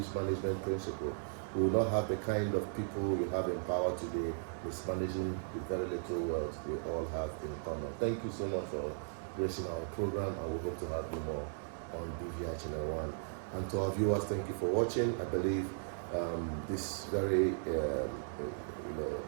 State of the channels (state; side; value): silent; left; digital silence